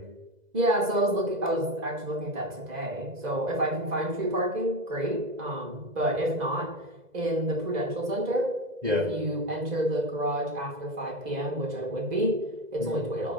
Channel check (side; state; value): left; late; 2.0 ms